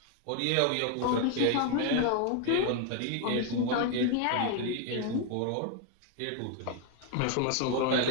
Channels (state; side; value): different; both; correlation 0.01